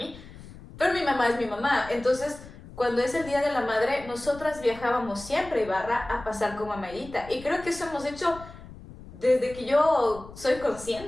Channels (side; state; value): left; noise; rumble, 17 dB below the sound